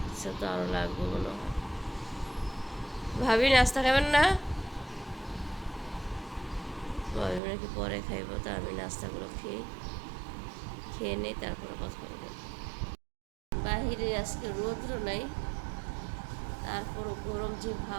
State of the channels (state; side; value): drops out; left; at 7.4 s